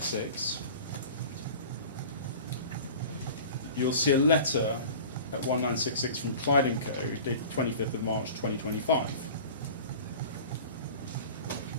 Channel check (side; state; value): both; inverted; correlation -0.39